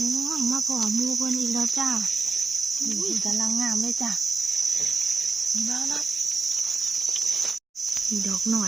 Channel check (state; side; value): quieter; left; 4.2 dB